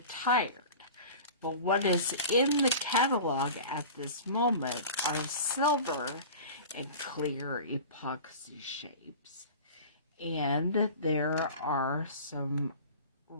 But what is in the catalog at this moment are silver and clear epoxy shapes. And there are some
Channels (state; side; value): inverted; both; correlation -0.37